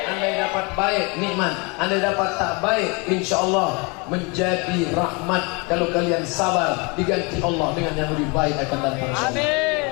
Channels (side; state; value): right; quieter; 30.0 dB